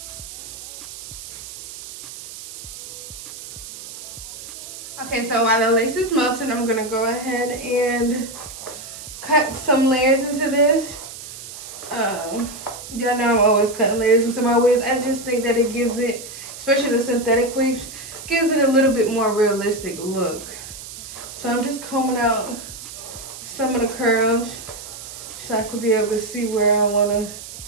Okay, so while the lace is melting, I'm going to go ahead and cut some layers into this. Y'all know I'm always cutting layers into my wigs. I just think that it gives it, especially the synthetic wigs, gives it a little bit more realistic look. So I'm just combing out some of the curls so I can be able to see where I want to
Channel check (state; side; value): noise; right; hiss, 12 dB below the sound